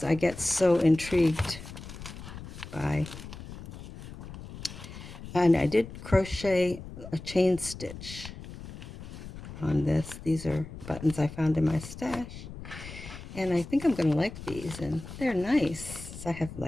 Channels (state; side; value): noise; left; rumble, 13 dB below the sound